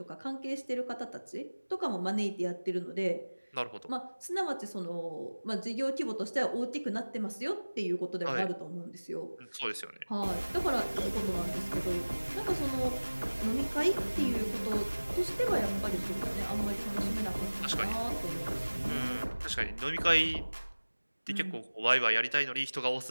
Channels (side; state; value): both; inverted; correlation -1.00